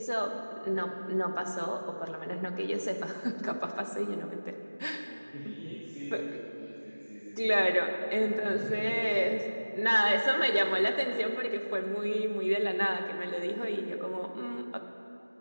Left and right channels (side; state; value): both; inverted; correlation -1.00